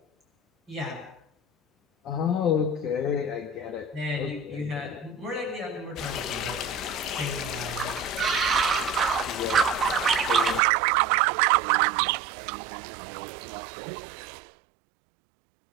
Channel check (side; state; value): left; drops out; at 10.6 s